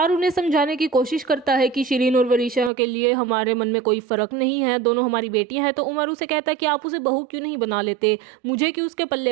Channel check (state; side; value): drops out; left; at 2.7 s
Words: उन्हें समझाने की कोशिश करता है कि शिरीन और वरीशा के लिए हमारे मन में कोई फर्क नहीं है, दोनों हमारी बेटियां हैं। तो उमर उसे कहता है कि आप उसे बहू क्यों नहीं बना लेते, मुझे क्यों उसके